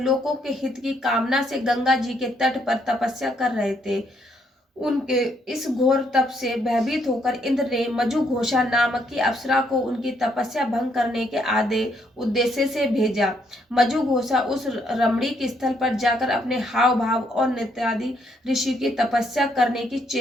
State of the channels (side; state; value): both; normal; correlation 0.72